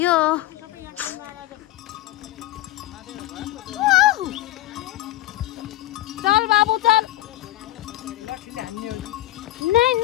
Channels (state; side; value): quieter; right; 16.0 dB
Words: चल बाबु चल